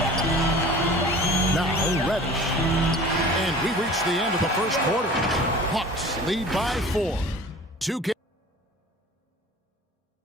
Now Reddish. And we reach the end of the first quarter. Hawks lead by 4. 2 K.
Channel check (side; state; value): both; normal; correlation 0.42